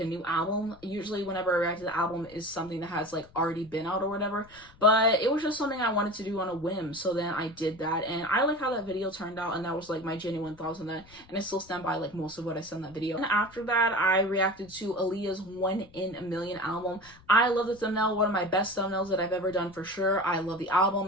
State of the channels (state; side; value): noise; left; rumble, 25 dB below the sound